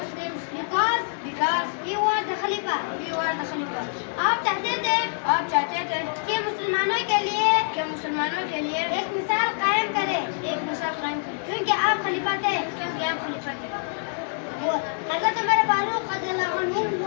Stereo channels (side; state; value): right; silent; digital silence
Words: because he was the Khalifa. आप चाहते थे कि मुसलमानों के लिए एक मिसाल कायम करें क्योंकि आप खलीफा थे. हज़रत उमर फारूक रज़ियल्लाहु अन्हु